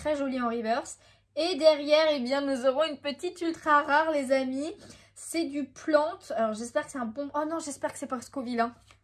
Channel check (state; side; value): identical; both; correlation 1.00